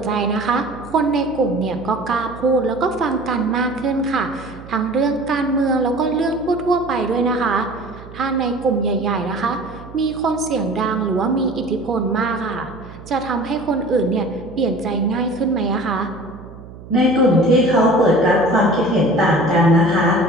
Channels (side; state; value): right; noise; hum, 17 dB below the sound